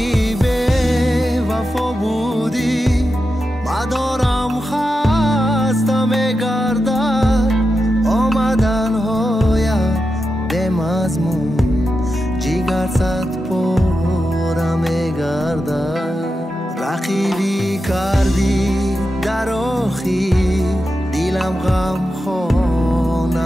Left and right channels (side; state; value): both; normal; correlation 0.89